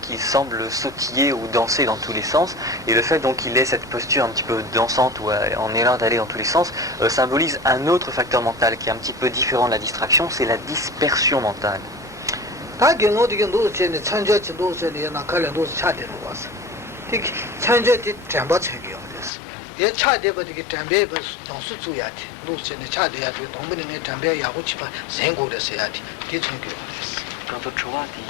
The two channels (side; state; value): right; drops out; at 19.3 s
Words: semble sautiller ou danser dans tous les sens, et le fait donc qu'il ait cette posture un petit peu dansante ou en élan d'aller dans tous les sens symbolise un autre facteur mental qui est un petit peu différent de la distraction, c'est la dispersion mentale. Quant au Chowa,